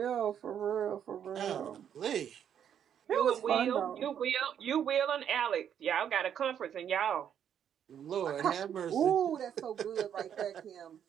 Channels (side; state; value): left; quieter; 9.0 dB